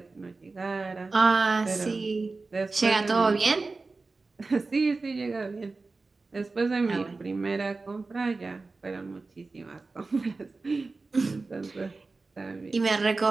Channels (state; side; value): quieter; left; 3.7 dB